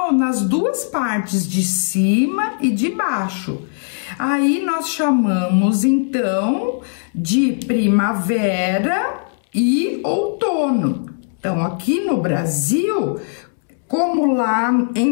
nas duas partes, de cima e de baixo. Aí nós chamamos então de primavera e outono. Então, aqui no Brasil, como lá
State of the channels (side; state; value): right; silent; 67 dB below the other